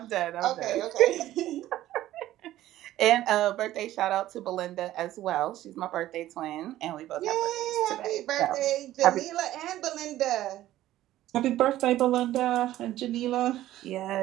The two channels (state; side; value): quieter; left; 14.3 dB